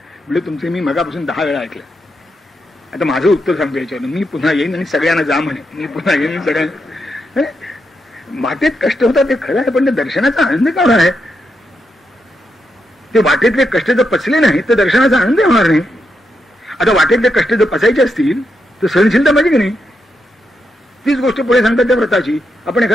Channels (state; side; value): normal; both; correlation 0.83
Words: म्हणजे तुमचे मी मगापासून 10 वेळा ऐकलं. आता माझं उत्तर सांगतो याच्यावर, मी पुन्हा येईन आणि सगळ्यांना जा म्हणे, मी पुन्हा येईन सगळ्यांना. वाटेत कष्ट होतात ते खरं आहे, पण ते दर्शनाचा आनंद का होणार आहे? ते वाटेतले कष्ट जर पचले नाही तर दर्शनाचा आनंद होणार नाही. आता वाटेतले कष्ट जर पचायचे असतील तर सहनशीलता पाहिजे की नाही? तीच गोष्ट पुढे सांगतात त्या व्रताची. आपण